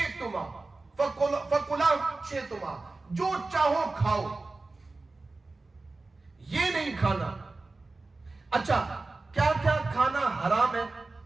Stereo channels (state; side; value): quieter; left; 3.4 dB